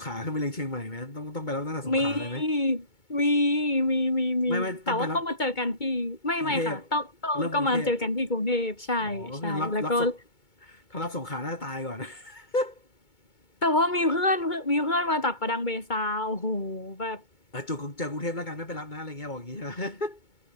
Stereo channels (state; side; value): late; right; 2.2 ms